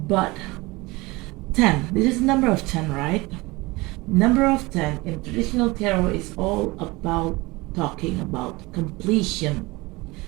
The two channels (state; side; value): quieter; left; 22.7 dB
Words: But 10, this is the number of 10, right? Number of 10 in traditional tarot is all about talking about completion.